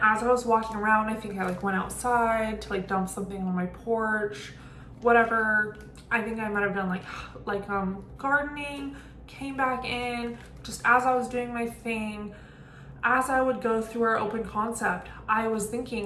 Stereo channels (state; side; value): identical; both; correlation 1.00